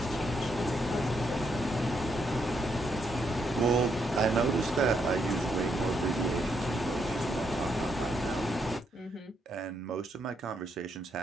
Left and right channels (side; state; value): both; normal; correlation 0.77